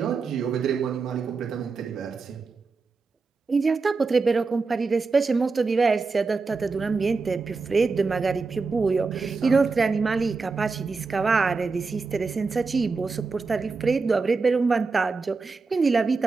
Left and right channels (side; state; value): left; quieter; 4.3 dB